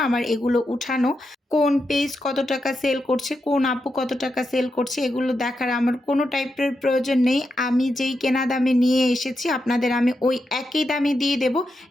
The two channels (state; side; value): normal; both; correlation 0.86